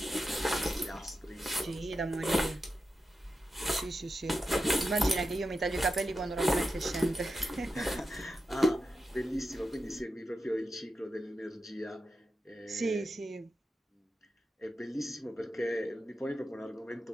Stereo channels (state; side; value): normal; both; correlation 0.89